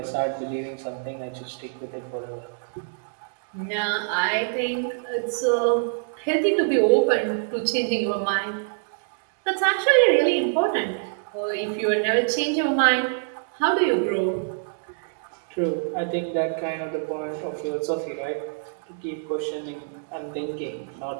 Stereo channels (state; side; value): silent; left; digital silence